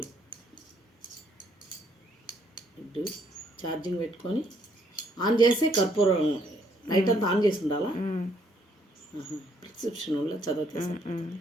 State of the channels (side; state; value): both; normal; correlation 0.69